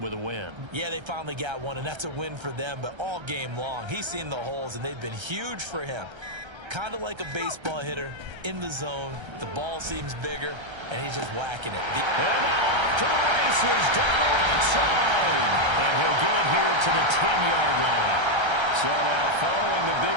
a win. Yeah, they finally got one, and that's a win for them, but all game long, he's seen the holes, and they've been huge for him. Kind of like a baseball hitter in the zone. The ball seems bigger, and he's just whacking it. And now off to the races, down the right side. And he'll get it here to the 10-yard line. So now following the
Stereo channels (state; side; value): late; left; 1.3 ms